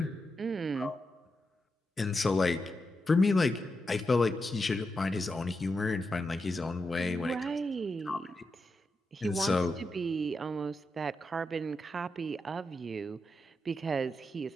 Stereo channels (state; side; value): normal; both; correlation 0.86